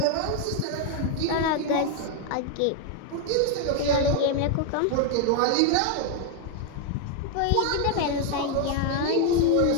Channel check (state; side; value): different; both; correlation 0.00